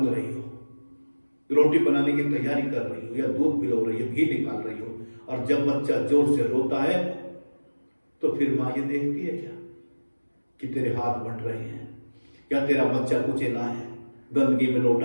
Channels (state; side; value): inverted; both; correlation -1.00